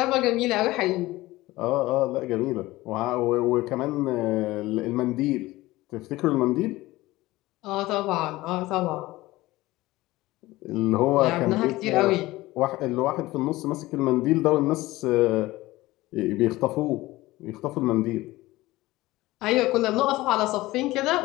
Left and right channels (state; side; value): quieter; right; 18.6 dB